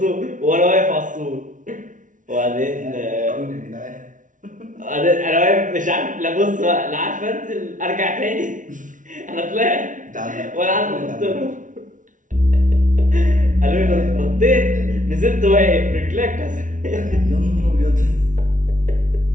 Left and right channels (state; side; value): late; left; 0.38 ms